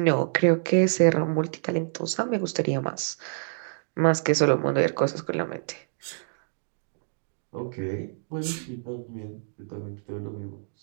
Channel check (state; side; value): silent; left; digital silence